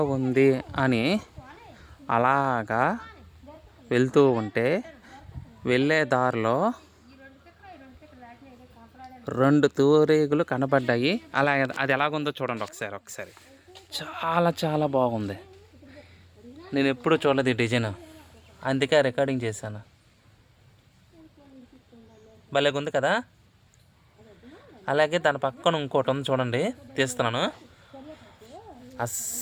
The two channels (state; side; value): identical; both; correlation 1.00